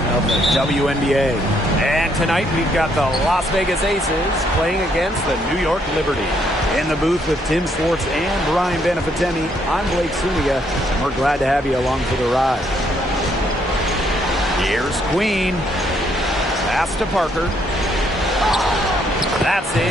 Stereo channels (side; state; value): both; normal; correlation 0.71